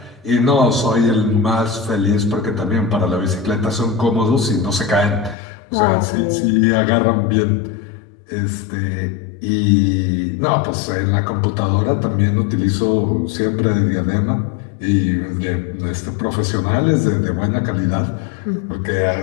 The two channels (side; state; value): right; drops out; at 5.4 s